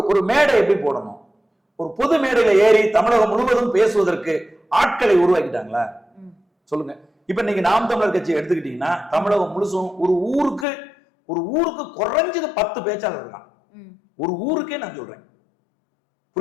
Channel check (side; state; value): right; drops out; at 10.7 s